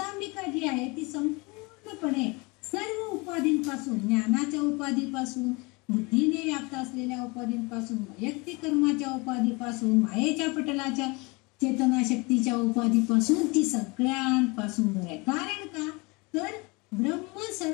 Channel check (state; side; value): quieter; right; 26.9 dB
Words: जी आहे ती संपूर्णपणे सर्व उपाधींपासून, ज्ञानाच्या उपाधीपासून, बुद्धीने व्याप्त असलेल्या उपाधींपासून, वैयक्तिक कर्माच्या उपाधीपासून, मायेच्या पटलाच्या चेतनाशक्तीच्या उपाधीपासून, ती सगळ्यांपासून दूर आहे. कारण का तर ब्रह्म